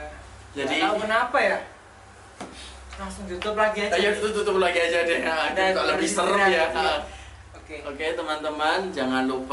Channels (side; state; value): both; identical; correlation 1.00